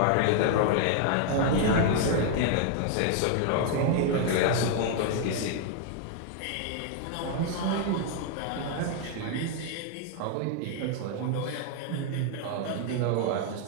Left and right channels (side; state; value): both; different; correlation 0.00